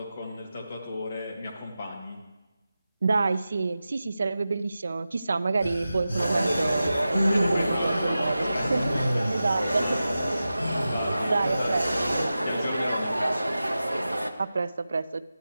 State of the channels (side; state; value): both; inverted; correlation -0.93